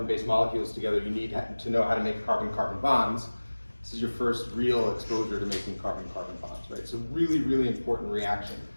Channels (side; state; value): both; inverted; correlation -1.00